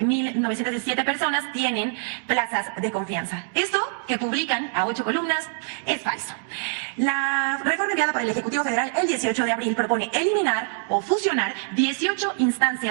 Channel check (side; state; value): left; silent; 62 dB below the other